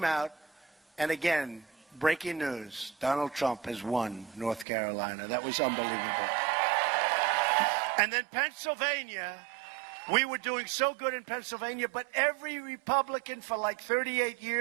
out, and again, breaking news, Donald Trump has won North Carolina. That was unbelievable. And then Pennsylvania, We were doing so good in Pennsylvania, but every Republican for like 38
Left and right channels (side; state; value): left; drops out; at 4.7 s